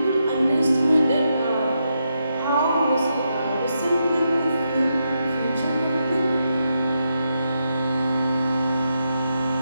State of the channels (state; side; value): inverted; both; correlation -0.83